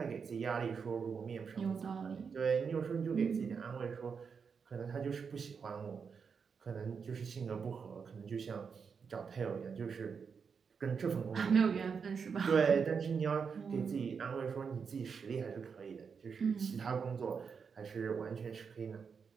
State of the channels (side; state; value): left; quieter; 6.0 dB